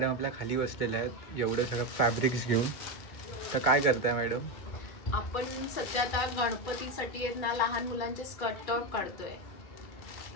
आपल्या खाली बसलेल्या आहेत एवढं सगळं फॅब्रिक्स घेऊन. तर काय करताय मॅडम? आपण सध्या आता गणपतीसाठी आहेत ना लहान मुलांचे स्कर्ट टॉप काढतोय.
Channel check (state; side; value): late; right; 2.1 ms